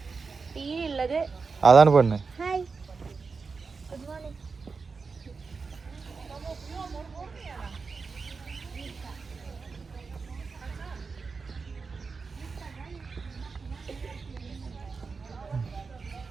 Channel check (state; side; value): quieter; left; 4.7 dB